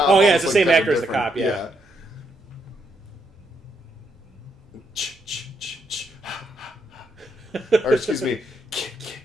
Oh, yeah, it's almost the same looked actor as the different. cop, yeah. Or excuse me.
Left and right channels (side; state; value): both; normal; correlation 0.77